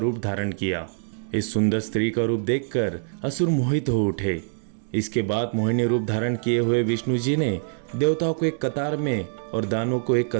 धारण किया। इस सुंदर स्त्री का रूप देखकर असुर मोहित हो उठे। इसके बाद मोहिनी रूप धारण किए हुए विष्णु जी ने देवताओं को एक कतार में और दानवों को एक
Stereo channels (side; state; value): left; silent; digital silence